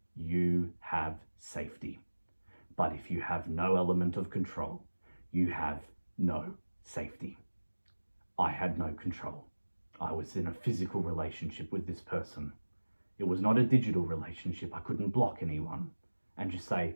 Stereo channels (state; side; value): inverted; both; correlation -1.00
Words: you have safety. But if you have no element of control, you have no safety. I had no control. I was in a physical relationship with this person. It was not a digital relationship. I couldn't block anyone and just say,